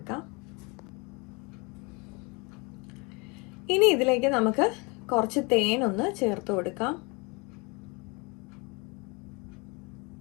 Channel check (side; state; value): right; quieter; 29.2 dB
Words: ഇനി ഇതിലേക്ക് നമുക്ക് കുറച്ച് തേനൊന്ന് ചേർത്ത് കൊടുക്കാം.